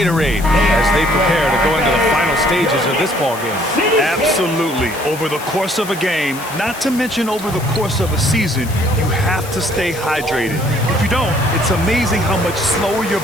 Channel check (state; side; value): noise; left; hiss, 15 dB below the sound